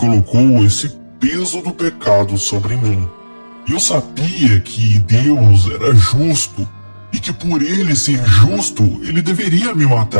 esse peso do pecado sobre mim. E eu sabia que Deus era justo, e que por Ele ser justo, Ele deveria me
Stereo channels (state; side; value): inverted; both; correlation -1.00